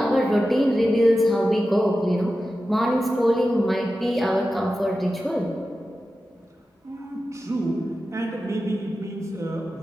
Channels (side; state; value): both; normal; correlation 0.93